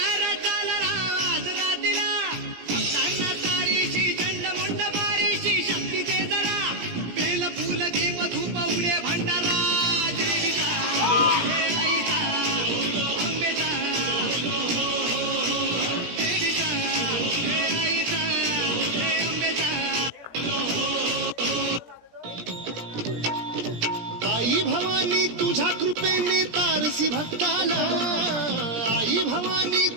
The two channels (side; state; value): left; late; 18 ms